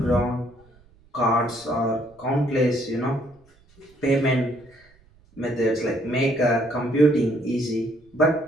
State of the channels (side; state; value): right; noise; rumble, 30 dB below the sound